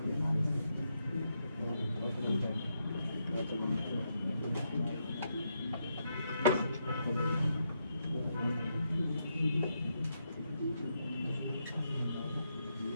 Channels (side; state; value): both; inverted; correlation -0.81